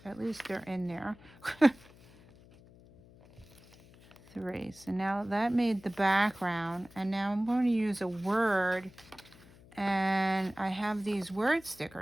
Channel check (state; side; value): noise; left; hum, 24 dB below the sound